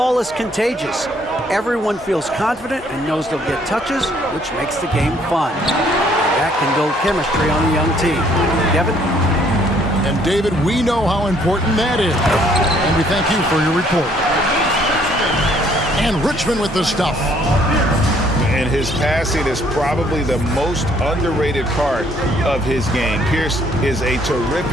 is contagious. Everyone feels confident and knows they'll get touches, which makes the game fun. That can build chemistry on a young team. Kevin? And David, we know how important that is. And we thank you for your report. And Richmond with the stuff. And his passing is probably the most underrated part of his game. Pierce is a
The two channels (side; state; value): both; normal; correlation 0.64